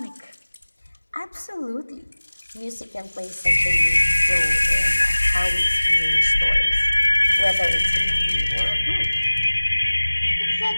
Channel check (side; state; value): both; inverted; correlation -1.00